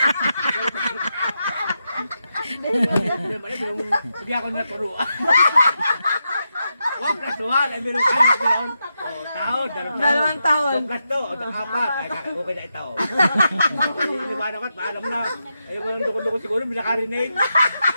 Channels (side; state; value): both; inverted; correlation -0.86